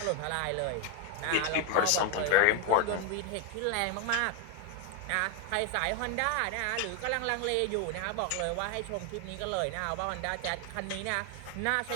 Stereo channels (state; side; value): different; both; correlation 0.01